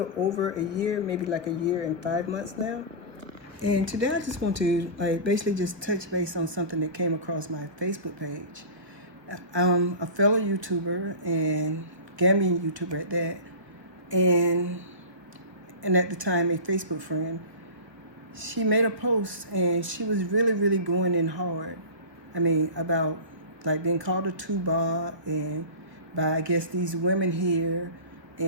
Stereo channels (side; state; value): left; late; 1.0 ms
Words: over a year, maybe like a year and 5 months now. And today I just want to basically just touch base on something that came across my Facebook page. I'm a fellow YouTuber and Gambian YouTuber at that, and at the time a Facebook friend. She made a post and she was really going in hard. I mean, about like being called a tuba and by I guess these women here,